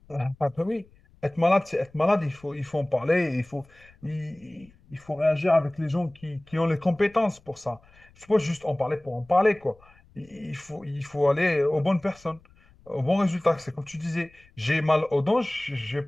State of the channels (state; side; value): noise; left; rumble, 28 dB below the sound